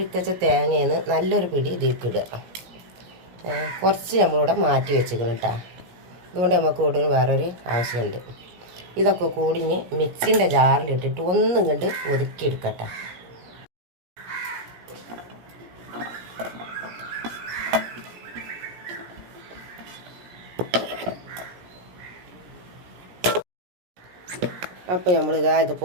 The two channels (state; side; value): late; left; 17 ms